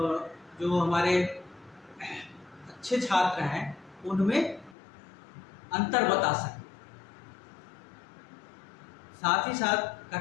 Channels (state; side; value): drops out; right; at 4.8 s